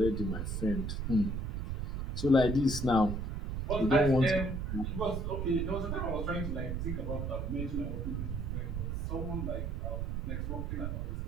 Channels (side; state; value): right; noise; rumble, 2 dB below the sound